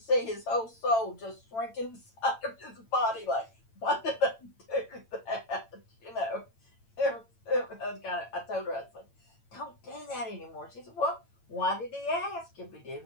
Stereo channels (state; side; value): late; right; 8.9 ms